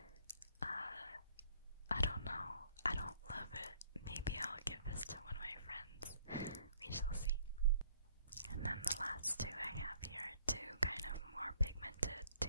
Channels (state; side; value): inverted; both; correlation -0.60